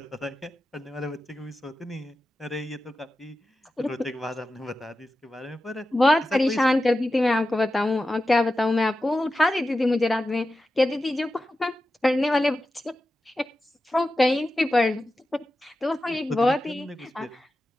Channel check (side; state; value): both; normal; correlation 0.92